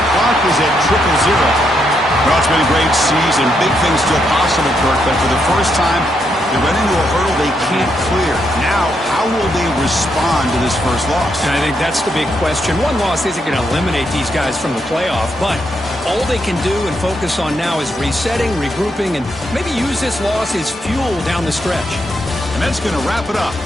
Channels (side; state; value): both; normal; correlation 0.79